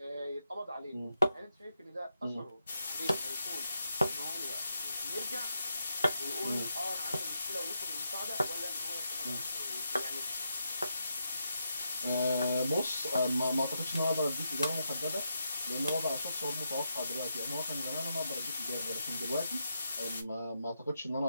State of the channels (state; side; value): inverted; both; correlation -0.83